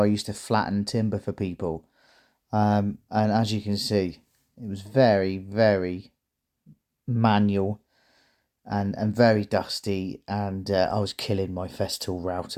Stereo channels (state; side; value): identical; both; correlation 1.00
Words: I used to flatten timber for people. And as you can see, it was very, very manual and very dusty, and I was killing my Festool